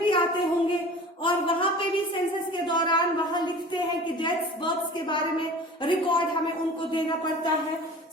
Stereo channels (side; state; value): both; normal; correlation 0.40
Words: भी आते होंगे और वहां पे भी सेंसस के दौरान वहां लिखते हैं कि डेथ्स बर्थ्स के बारे में रिकॉर्ड हमें उनको देना पड़ता है।